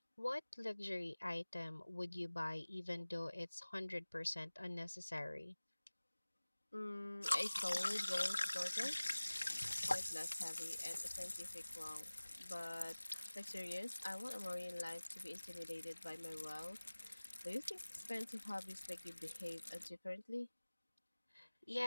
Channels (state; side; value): inverted; both; correlation -1.00